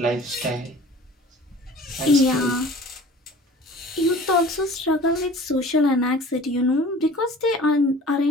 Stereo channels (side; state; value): both; normal; correlation 0.45